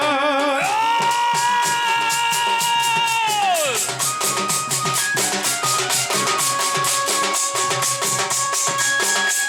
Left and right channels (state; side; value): identical; both; correlation 1.00